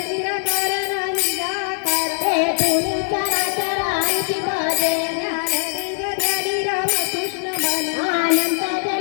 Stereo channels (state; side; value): silent; right; digital silence